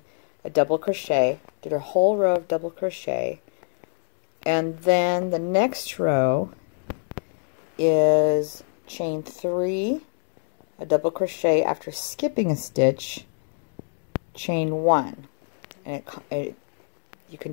a double crochet, did a whole row of double crochet, and then the next row is chain 3, a double crochet after skipping a stitch, chain 1, and you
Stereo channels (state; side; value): silent; right; 62 dB below the other